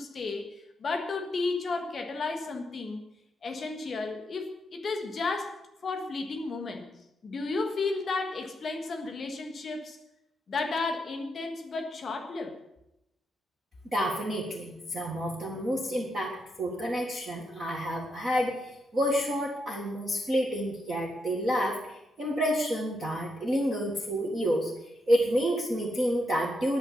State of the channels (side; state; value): both; normal; correlation 0.81